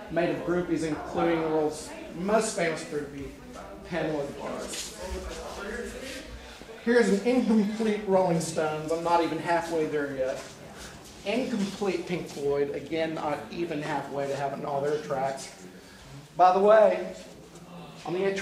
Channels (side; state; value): both; identical; correlation 1.00